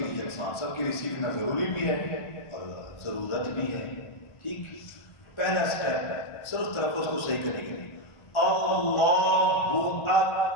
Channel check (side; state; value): right; late; 1.3 ms